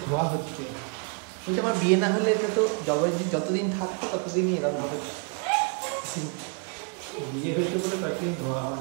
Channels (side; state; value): left; quieter; 37.1 dB